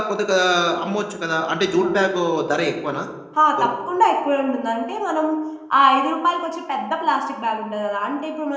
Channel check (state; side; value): identical; both; correlation 1.00